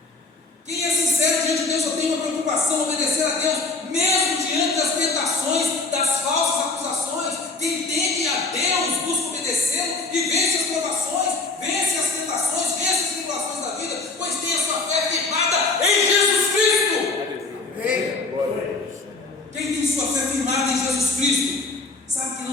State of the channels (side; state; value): right; quieter; 3.8 dB